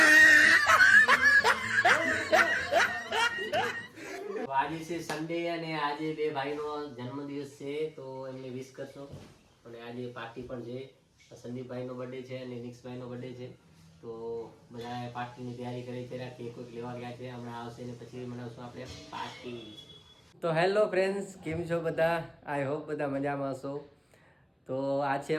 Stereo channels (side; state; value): both; identical; correlation 1.00